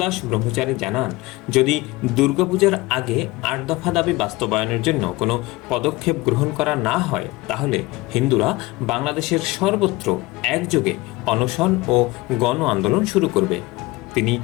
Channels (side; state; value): right; quieter; 20.9 dB